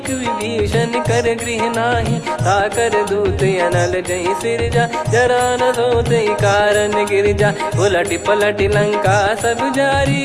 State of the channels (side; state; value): both; identical; correlation 1.00